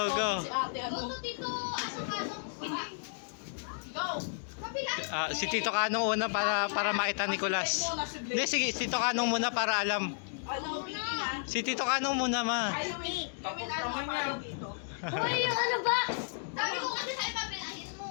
Si ate, ano? Gusto dito. Asang kanon. Go! Kapila. Si Tito Kanong una para makita ni Nicolas. Hindi, sige, si Tito Kanong muna para alam. Ano, Vicky na? Si Tito Kanong muna, ma. Ay, Gawin ano, follow dito. Hoy, yung ano ba? Sabi ko kasi sa ipapilahin mo.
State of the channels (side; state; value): right; silent; digital silence